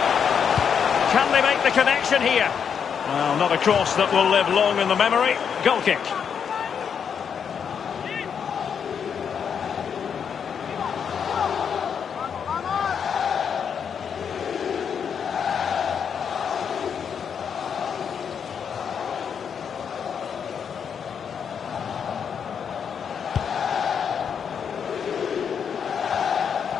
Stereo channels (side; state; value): right; quieter; 7.3 dB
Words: Can they make the connection here? Well, not a cross that will live long in the memory. Goal kick.